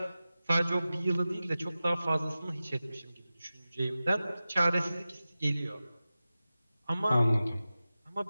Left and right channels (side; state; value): both; inverted; correlation -0.95